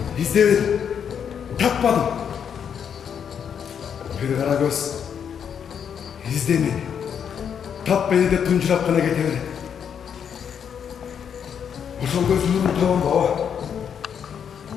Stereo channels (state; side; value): quieter; right; 7.8 dB